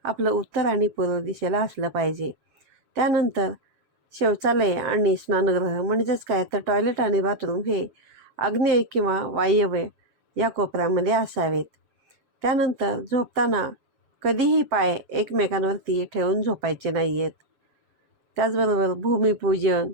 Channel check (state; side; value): late; left; 7.3 ms